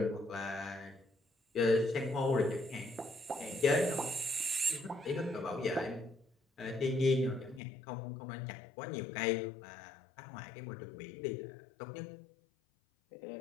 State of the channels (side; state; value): right; drops out; at 7.6 s